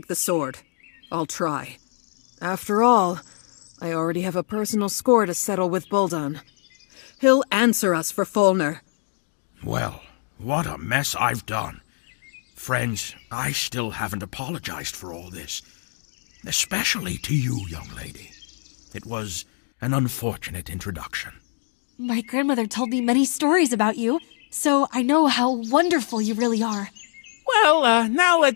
the sword. I'll try. After all, I already have a personal score to settle with Buldon. He'll answer us for Fulner. Well, what a mess I've done. Friends, I still haven't apologized for all this. Especially to you, young lady. It was an unfortunate introduction. My grandmother told me many stories about you, so I know how wonderful you really are. Well, now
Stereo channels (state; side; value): silent; right; digital silence